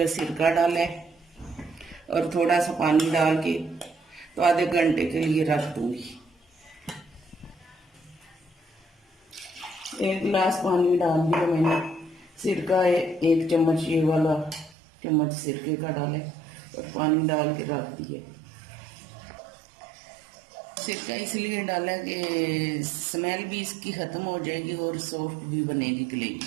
सिरका डाला है और थोड़ा सा पानी डाल के तो आधे घंटे के लिए रख दूंगी। 1 गिलास पानी डाल दिया मैंने। सिरका 1 चम्मच, ये वाला चम्मच सिरके का डाला है और पानी डाल के रख दिए। सिरका इसलिए डाला कि स्मेल भी इसकी खत्म हो जाएगी और सॉफ्ट भी बनेगी कलेजी।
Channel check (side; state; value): left; drops out; at 14.8 s